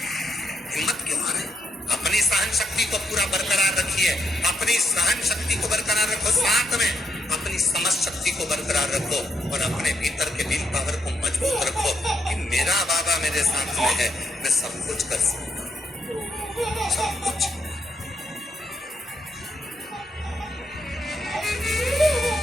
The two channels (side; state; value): both; normal; correlation 0.78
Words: हिम्मत क्यों आ रही? अपनी सहन शक्ति को पूरा बरकरार रखिए, अपनी सहन शक्ति को बरकरार रखो, साथ में अपनी समझ शक्ति को बरकरार रखो और अपने भीतर के विल पावर को मजबूत रखो कि मेरा बाबा मेरे साथ में है, मैं सब कुछ कर सकता हूं, सब कुछ।